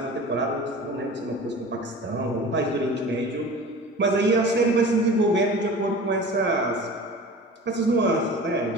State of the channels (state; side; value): normal; both; correlation 0.38